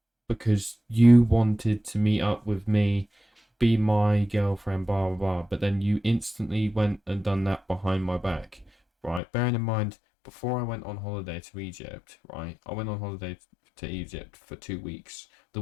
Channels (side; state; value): right; drops out; at 9.2 s